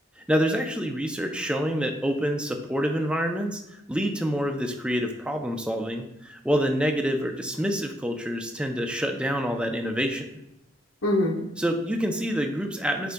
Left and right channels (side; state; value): both; normal; correlation 0.77